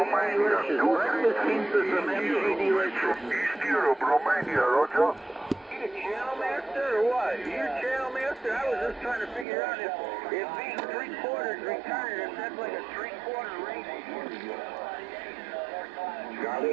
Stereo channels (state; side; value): drops out; left; at 9.5 s